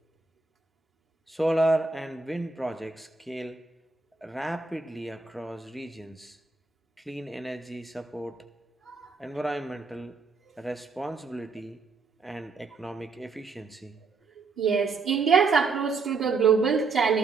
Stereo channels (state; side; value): quieter; left; 4.3 dB